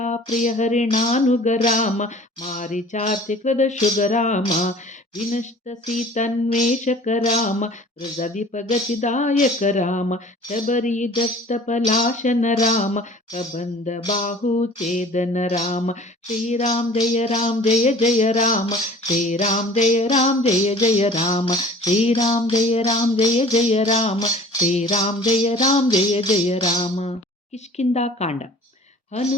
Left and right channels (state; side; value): normal; both; correlation 0.47